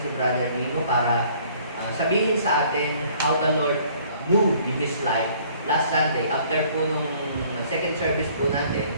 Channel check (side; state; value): both; inverted; correlation -0.58